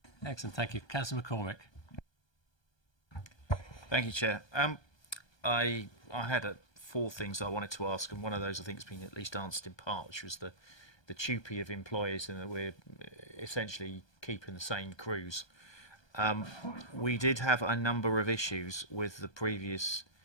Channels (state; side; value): late; right; 1.2 ms